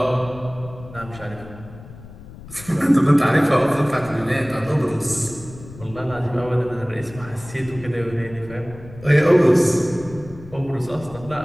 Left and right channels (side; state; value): left; noise; rumble, 17 dB below the sound